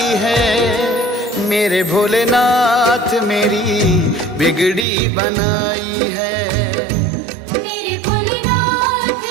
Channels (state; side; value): drops out; left; at 4.9 s